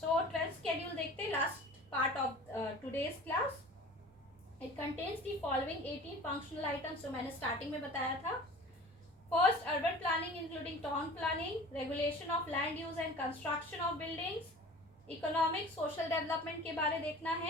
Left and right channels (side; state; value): both; normal; correlation 0.42